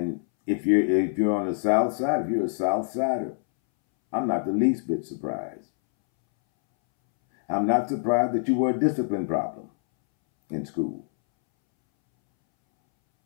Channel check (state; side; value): silent; right; 62 dB below the other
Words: if you're on the South Side, if you're a South Sider, I'm not the least bit surprised. I'm not surprised that you were a discipline problem in school.